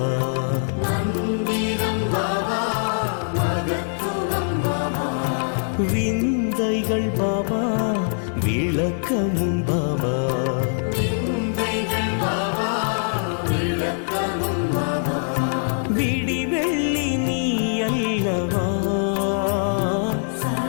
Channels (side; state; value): right; silent; digital silence